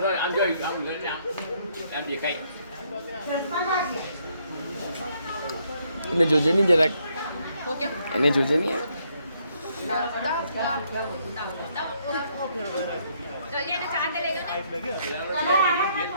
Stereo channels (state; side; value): inverted; both; correlation -0.71